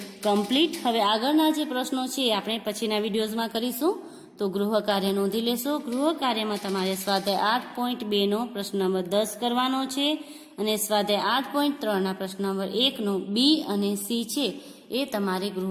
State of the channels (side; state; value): both; identical; correlation 1.00